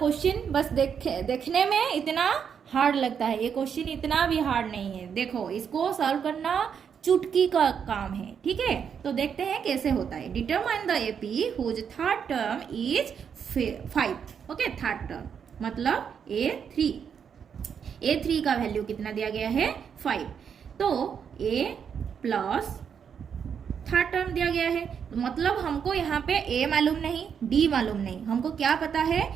बस देखने में इतना हार्ड लगता है, ये क्वेश्चन इतना भी हार्ड नहीं है। देखो, इसको सॉल्व करना चुटकी का काम है, ठीक है। तो देखते हैं कैसे होता है। Determine the AP whose third term is 5। Okay, third term मतलब A3 का वैल्यू कितना दिया गया है, 5। तो A प्लस थर्ड टर्म दिया गया है, मतलब हमको यहाँ पे A मालूम नहीं, D मालूम नहीं, हमको क्या पता है,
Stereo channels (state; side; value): quieter; left; 7.3 dB